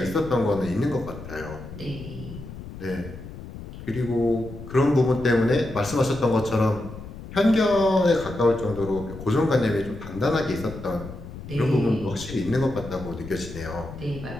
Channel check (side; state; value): left; noise; rumble, 12 dB below the sound